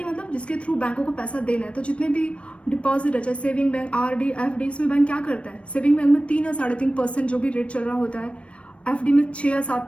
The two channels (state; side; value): late; right; 0.061 ms